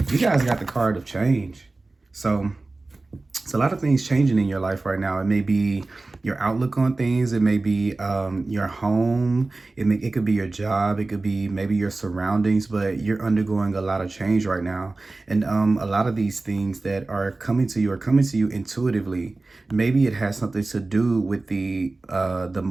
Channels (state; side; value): quieter; left; 3.3 dB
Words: you guys got the card of change. So it's a lot of things changing in your life right now. It may be your outlook on things. It may be your home. It could be your job. It could be maybe your surroundings, but you're undergoing a lot of change right now. And a lot of these things that are coming to you intuitively. Maybe it has something to do with the